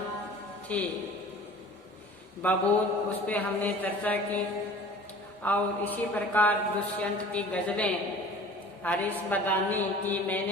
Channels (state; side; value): normal; both; correlation 0.44